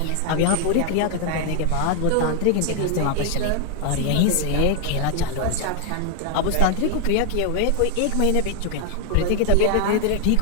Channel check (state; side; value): different; both; correlation 0.00